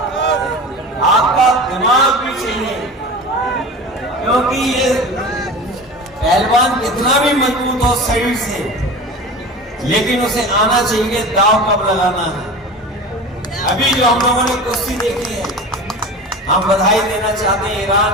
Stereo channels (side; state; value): both; normal; correlation 0.32